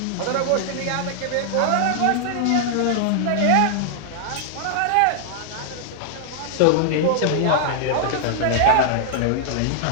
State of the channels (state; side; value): different; both; correlation -0.01